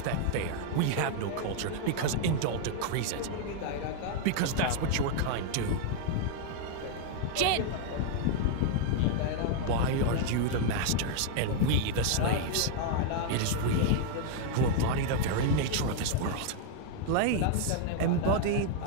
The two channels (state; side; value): different; both; correlation 0.00